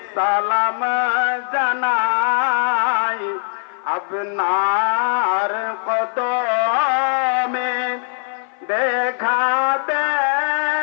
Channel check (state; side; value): silent; right; 56 dB below the other